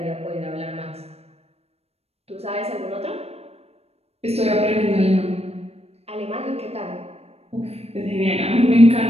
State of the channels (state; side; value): late; left; 0.30 ms